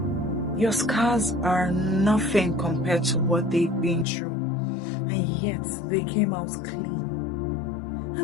Your scars are nothing compared to what they've been through, and yet they came out clean.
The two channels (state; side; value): drops out; right; at 4.0 s